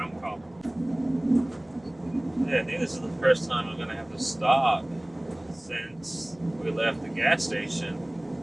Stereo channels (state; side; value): noise; right; rumble, 29 dB below the sound